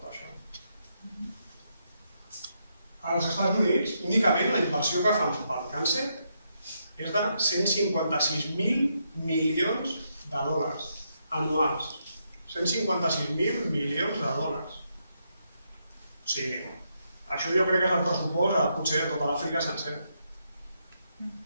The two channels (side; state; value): both; inverted; correlation -0.79